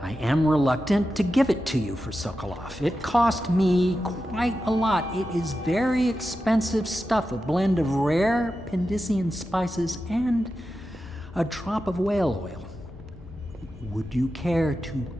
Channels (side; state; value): both; normal; correlation 0.91